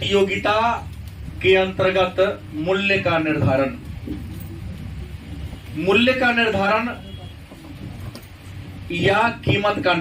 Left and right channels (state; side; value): identical; both; correlation 1.00